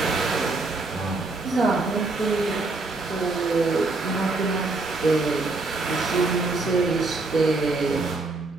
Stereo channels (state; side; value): quieter; left; 3.5 dB